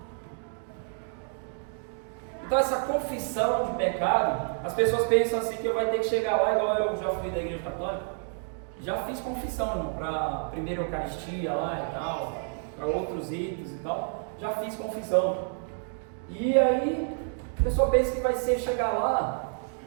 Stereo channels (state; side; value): silent; left; 57 dB below the other